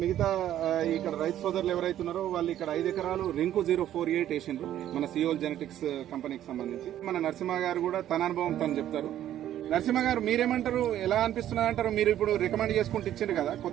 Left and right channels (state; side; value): quieter; left; 11.8 dB